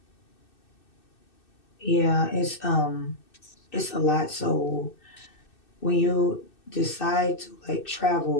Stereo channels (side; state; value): right; late; 2.6 ms